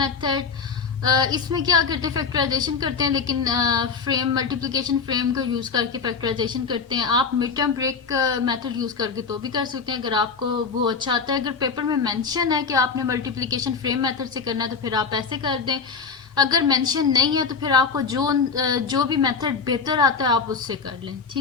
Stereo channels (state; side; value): quieter; right; 5.4 dB